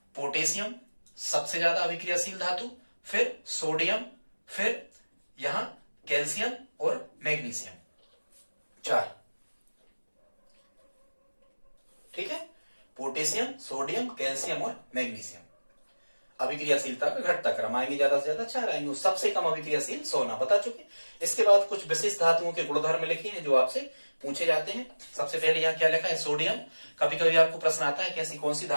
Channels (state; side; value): inverted; both; correlation -1.00